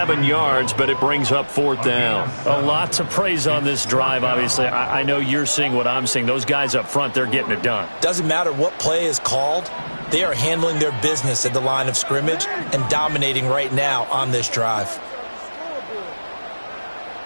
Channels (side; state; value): both; inverted; correlation -1.00